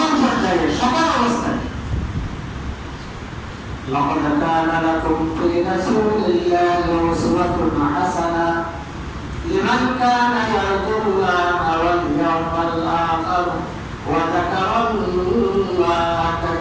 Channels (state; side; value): identical; both; correlation 1.00